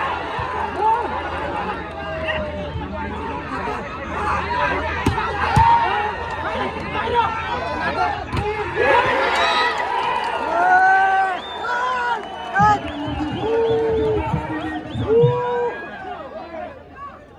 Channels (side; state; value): both; identical; correlation 1.00